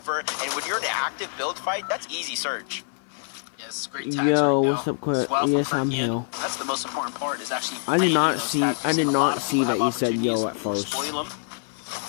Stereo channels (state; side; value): silent; right; 57 dB below the other